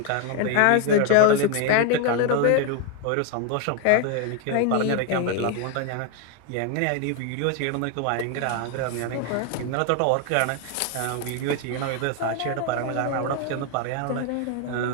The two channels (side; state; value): both; different; correlation 0.01